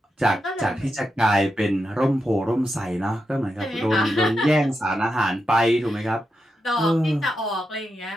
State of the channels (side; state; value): both; normal; correlation 0.87